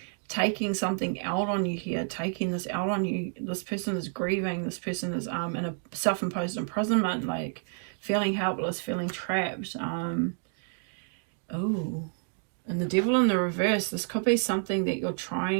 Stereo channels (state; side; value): silent; left; 58 dB below the other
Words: taking something out on you here, taking this out on you. This person is grieving. This person is in a self-imposed imprisonment, like feeling helpless, feeling trapped. Oh, and the Devil in the reverse. This could be something that you're